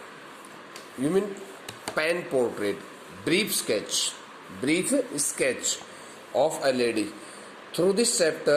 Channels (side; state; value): both; identical; correlation 1.00